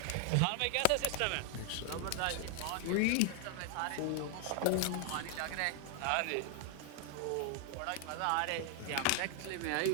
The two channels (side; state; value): both; different; correlation 0.00